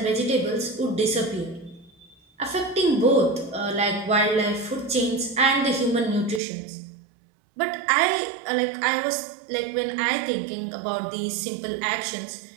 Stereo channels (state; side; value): drops out; left; at 6.4 s